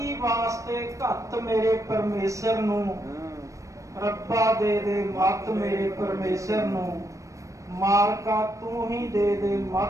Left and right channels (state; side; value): late; left; 0.15 ms